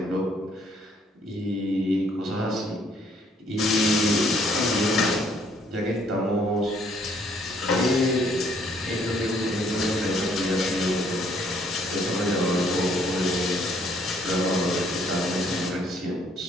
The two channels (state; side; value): normal; both; correlation 0.65